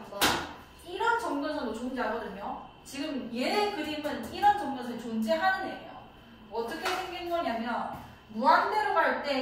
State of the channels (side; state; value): both; identical; correlation 1.00